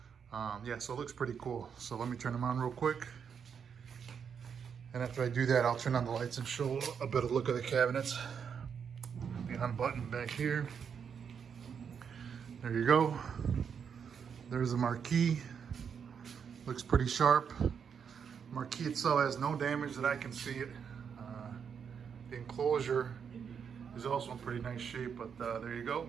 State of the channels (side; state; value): left; quieter; 7.0 dB